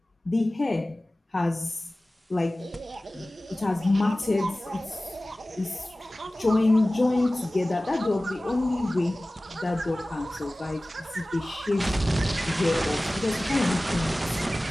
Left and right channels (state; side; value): normal; both; correlation 0.97